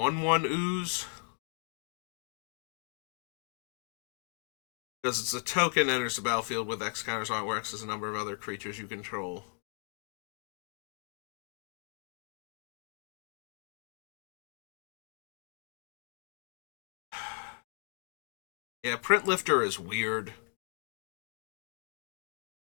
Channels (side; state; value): right; quieter; 39.3 dB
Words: ooze. Because it's a token, enters the battlefield with X counters on it, where X is the number of other creatures you control. Yeah, Print Lifter is weird.